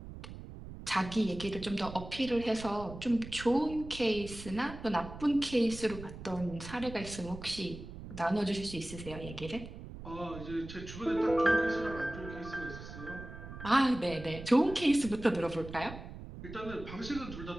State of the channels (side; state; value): right; noise; rumble, 12 dB below the sound